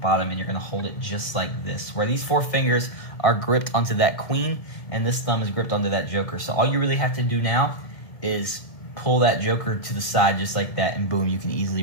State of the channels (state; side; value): late; right; 1.9 ms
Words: And you're going to hold it just like this. Where these four fingers are gripped onto that queen. And this thumb is gripped onto that joker. So all you really have to do now is pull that joker to the side just like that, and boom, you can